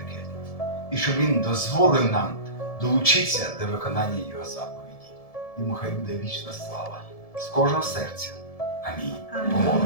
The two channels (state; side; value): late; right; 1.7 ms